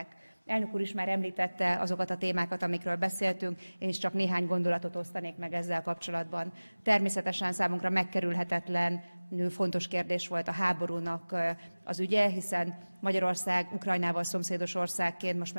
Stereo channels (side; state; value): both; inverted; correlation -1.00